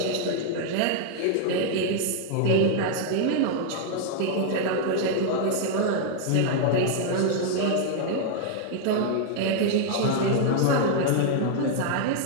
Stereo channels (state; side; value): different; both; correlation 0.00